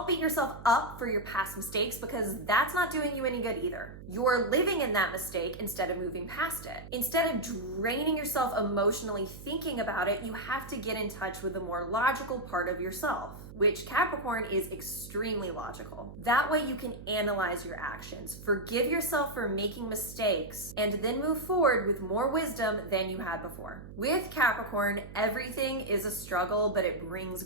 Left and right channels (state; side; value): noise; right; hum, 14 dB below the sound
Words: beat yourself up for your past mistakes because that's not doing you any good either. You're living in that mistake instead of moving past it. Instead of draining yourself emotionally thinking about it, you have to get in touch with the more logical part of yourself, which Capricorn is extremely logical. That way you can analyze your actions, forgive yourself for making mistakes, and then move forward with more wisdom than you had before. With Capricorn, everything is a struggle, but it brings